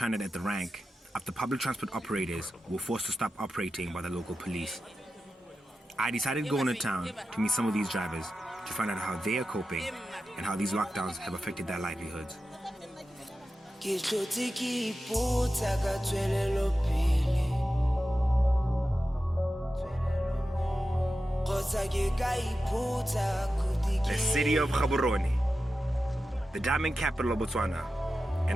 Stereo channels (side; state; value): both; normal; correlation 0.92